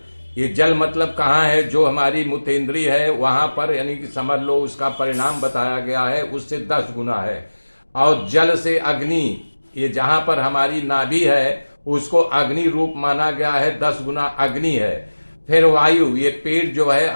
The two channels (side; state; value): both; inverted; correlation -1.00